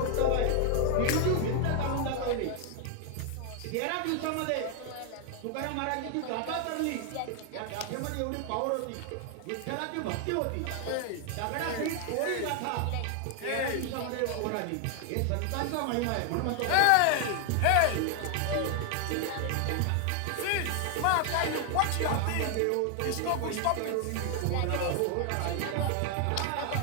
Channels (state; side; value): different; both; correlation 0.00